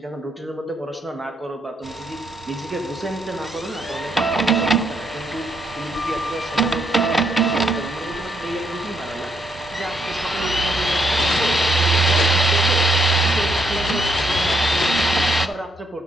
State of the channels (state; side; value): normal; both; correlation 0.75